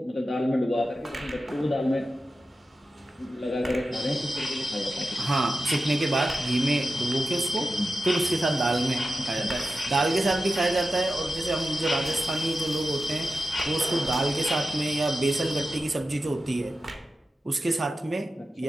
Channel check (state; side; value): normal; both; correlation 0.91